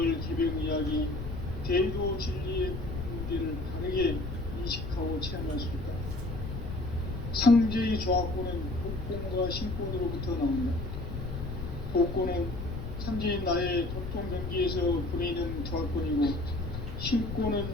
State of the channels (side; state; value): left; noise; rumble, 6 dB below the sound